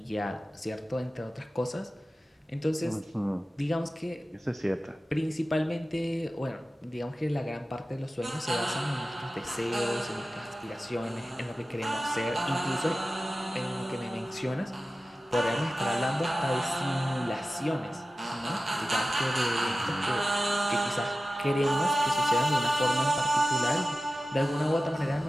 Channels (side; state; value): both; normal; correlation 0.94